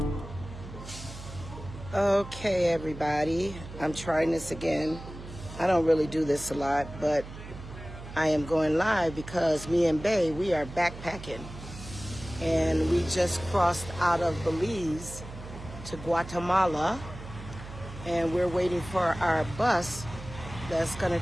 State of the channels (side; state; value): right; noise; hum, 13 dB below the sound